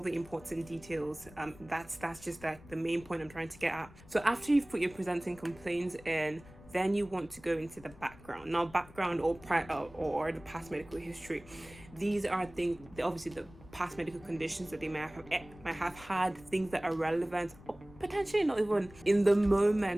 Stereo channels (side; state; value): left; noise; rumble, 21 dB below the sound